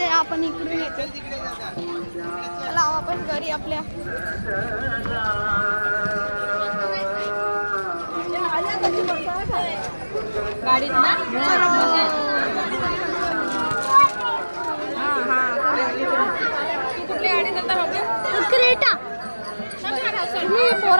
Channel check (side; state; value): both; inverted; correlation -1.00